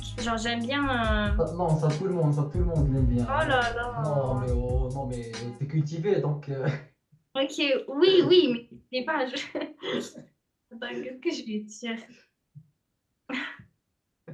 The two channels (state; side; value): identical; both; correlation 1.00